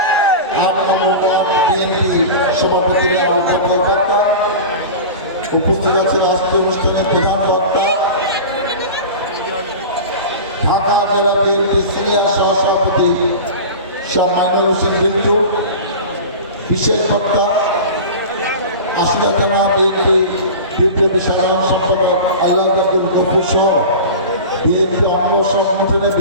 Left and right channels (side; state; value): both; inverted; correlation -0.32